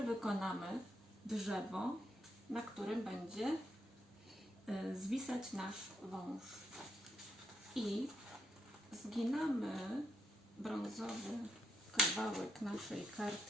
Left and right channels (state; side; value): normal; both; correlation 0.80